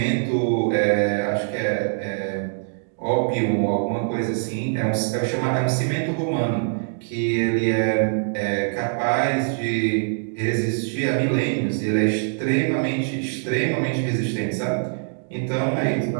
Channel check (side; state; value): left; silent; digital silence